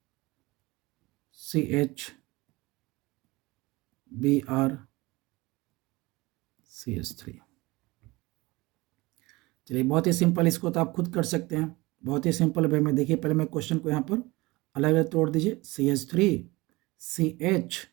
CH Br CH3। चलिए बहुत ही सिंपल, इसको तो आप खुद कर सकते हैं, बहुत ही सिंपल वे में। देखिए पहले मैं क्वेश्चन को यहाँ पर अलग अलग तोड़ दीजिए, CH3 CH,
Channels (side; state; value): left; quieter; 22.0 dB